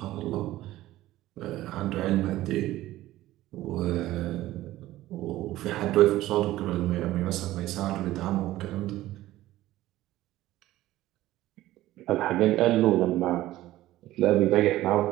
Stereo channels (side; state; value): left; quieter; 15.7 dB